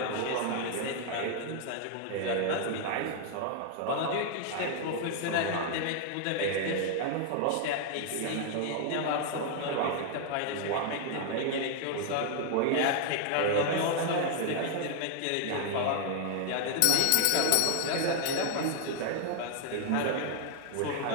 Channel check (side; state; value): both; different; correlation 0.00